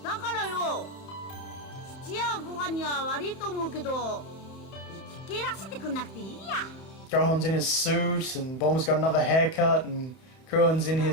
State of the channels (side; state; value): right; late; 31 ms